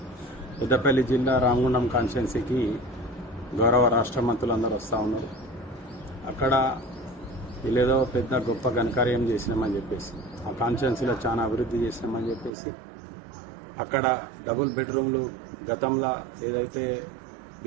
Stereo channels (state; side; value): drops out; left; at 12.5 s